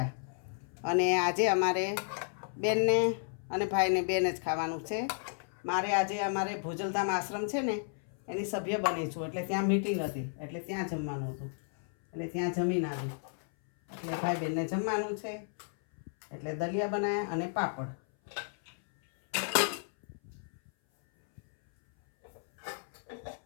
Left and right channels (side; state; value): right; silent; 56 dB below the other